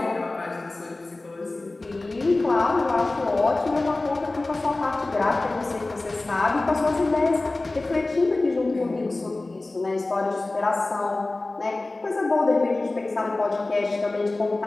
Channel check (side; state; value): right; quieter; 3.1 dB